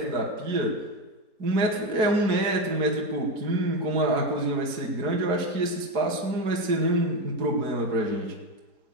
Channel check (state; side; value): late; left; 4.7 ms